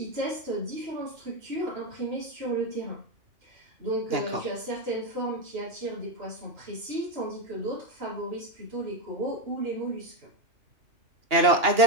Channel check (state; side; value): late; left; 2.8 ms